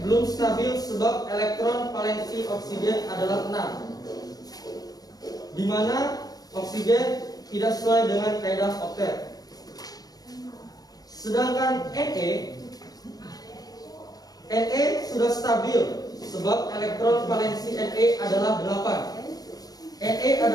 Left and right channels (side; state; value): right; late; 0.19 ms